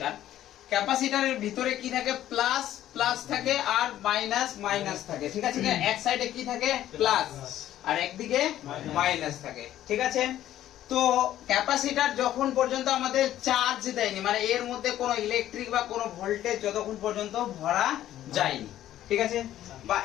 ক্যাপাসিটরের ভিতরে কি থাকে প্লাস প্লাস থাকে আর মাইনাস মাইনাস থাকে, ঠিক আছে? এক সাইডে কি থাকে প্লাস আর একদিকে মাইনাস থাকে, ঠিক আছে? তো ক্যাপাসিটর যখন পর্যন্ত আমাদের চার্জ দেয়নি, মানে এর মধ্যে কোনো ইলেকট্রিক বা কোনো ভোল্টেজ যতক্ষণ পর্যন্ত ভরা যায়নি, ঠিক আছে? বা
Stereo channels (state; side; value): quieter; right; 12.6 dB